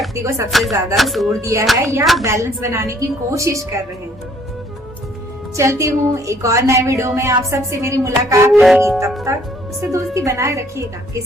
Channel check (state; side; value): normal; both; correlation 0.62